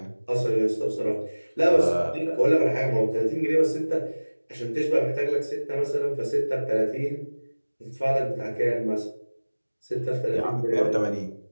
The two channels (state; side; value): inverted; both; correlation -1.00